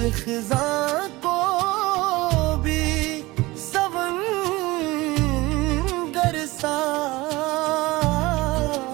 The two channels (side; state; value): left; quieter; 20.7 dB